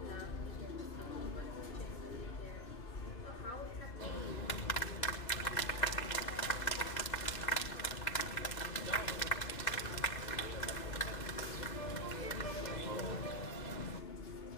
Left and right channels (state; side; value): late; right; 2.6 ms